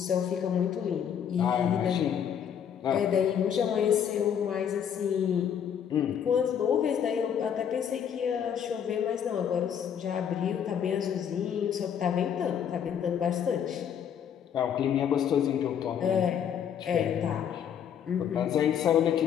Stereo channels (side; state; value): right; quieter; 8.5 dB